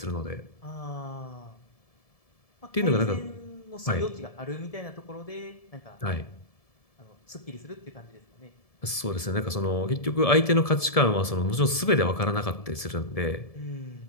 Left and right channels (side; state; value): right; late; 1.7 ms